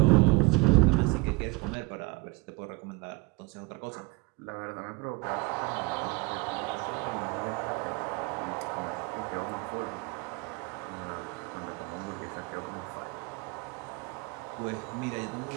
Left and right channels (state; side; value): quieter; left; 25.6 dB